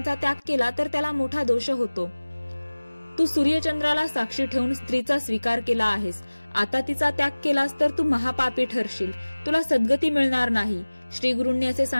त्याग केला तर त्याला मोठा दोष होतो. तू सूर्यचंद्राला साक्षी ठेवून स्त्रीचा स्वीकार केला आहेस. आता तिचा त्याग केलास तर तू महापापी ठरशील. तुला सद्गती मिळणार नाही. श्री गुरूंनी असे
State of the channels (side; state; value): both; inverted; correlation -1.00